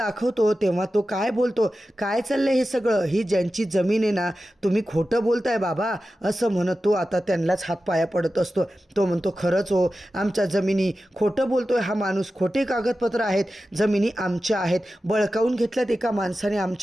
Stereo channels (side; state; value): both; normal; correlation 0.93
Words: तेव्हा तो काय बोलतो, काय चाललंय हे सगळं, ही ज्यांची जमीन आहे ना, तुम्ही खोटं बोलताय बाबा असं म्हणत तो आता त्यांनाच हातपाया पडत असतो. तो म्हणतो, खरंच हो, आमच्या जमिनी, खोटं बोलतोय हा माणूस, खोटे कागदपत्र आहेत, जमिनी आमच्या आहेत, बळकावून घेतल्यात एका माणसाने